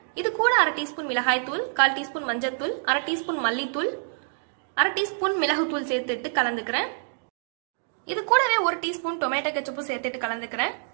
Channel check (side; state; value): left; silent; digital silence